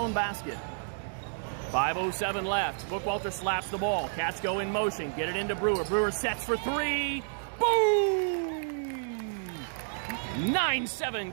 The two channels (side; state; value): left; silent; 58 dB below the other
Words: basket. 5:07 left. Bookwalter slaps the ball. Cats go in motion. Get it into Brewer. Brewer sets for three. Boom!